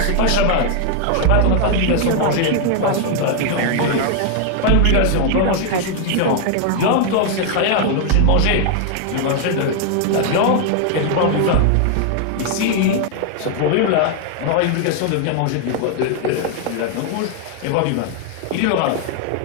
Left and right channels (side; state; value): both; different; correlation 0.00